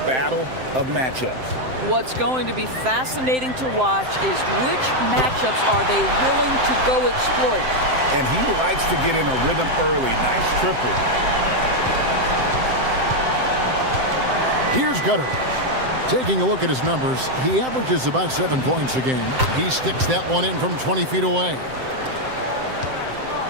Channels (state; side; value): late; left; 7.7 ms